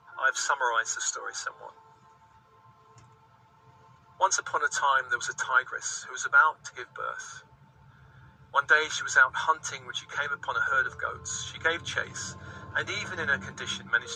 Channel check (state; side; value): identical; both; correlation 1.00